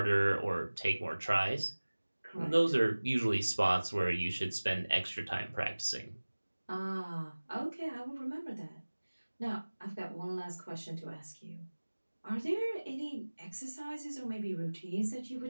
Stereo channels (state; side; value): inverted; both; correlation -1.00